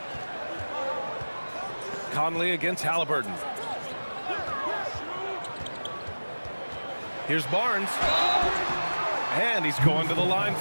Conley against Halliburton. Here's Barnes. And he's going to the line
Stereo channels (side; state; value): both; inverted; correlation -1.00